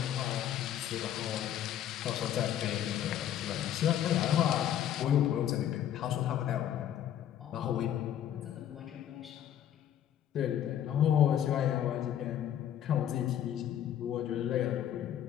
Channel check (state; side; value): quieter; right; 10.6 dB